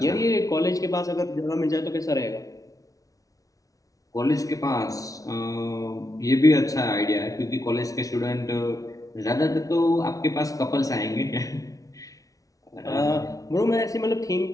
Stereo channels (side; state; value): right; late; 0.17 ms